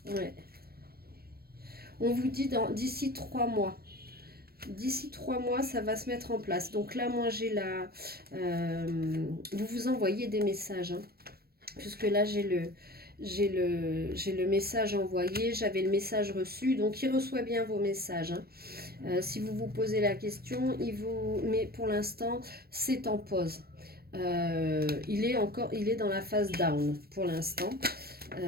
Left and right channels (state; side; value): late; left; 0.45 ms